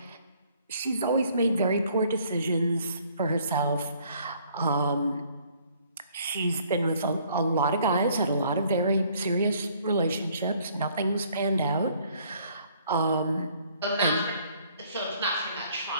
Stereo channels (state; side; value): inverted; both; correlation -0.62